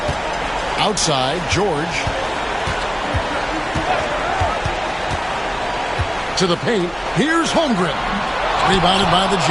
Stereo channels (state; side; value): identical; both; correlation 1.00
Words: Outside, George. To the paint. Here's Holmgren. Rebounded by the